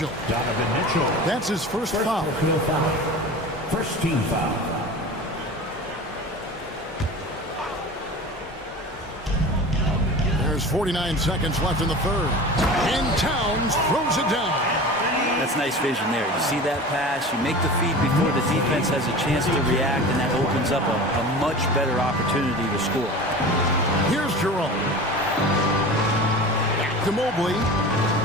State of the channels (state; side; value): normal; both; correlation 0.35